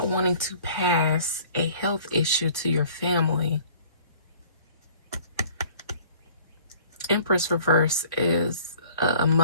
wanting to pass a health issue to your family. Empress reverse is a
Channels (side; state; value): both; inverted; correlation -0.51